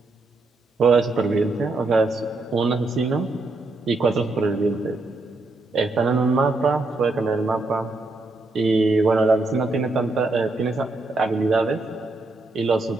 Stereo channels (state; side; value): quieter; left; 3.2 dB